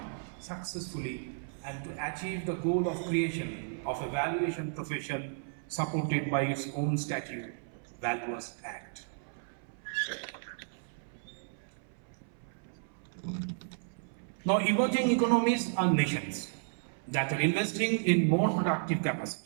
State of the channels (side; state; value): left; silent; 56 dB below the other